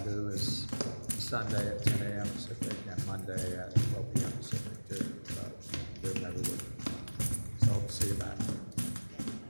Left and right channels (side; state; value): both; inverted; correlation -1.00